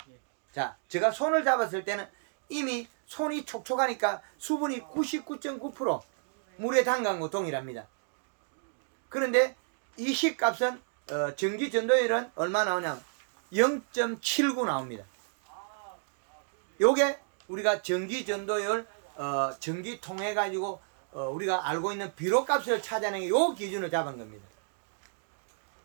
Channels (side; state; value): left; silent; digital silence